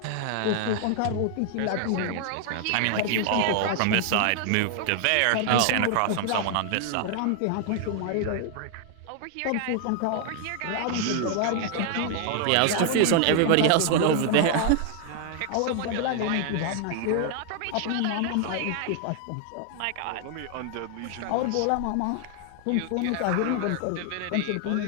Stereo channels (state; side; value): different; both; correlation 0.00